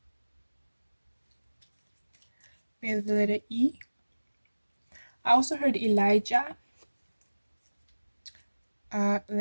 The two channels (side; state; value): both; inverted; correlation -1.00